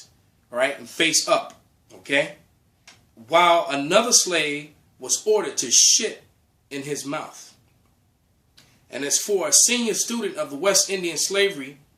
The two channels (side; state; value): both; identical; correlation 1.00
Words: All right. And face up. Okay. While another slave was ordered to shit in his mouth. And as for a senior student of the West Indian slavery